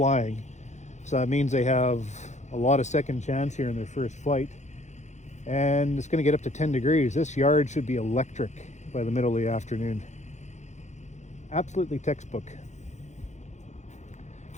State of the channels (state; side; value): late; right; 0.34 ms